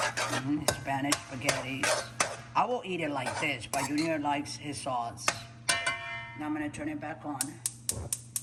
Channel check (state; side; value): identical; both; correlation 1.00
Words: Spanish spaghetti. I will eat it like this, but Junior likes his sauce. Now I'm gonna turn it back on.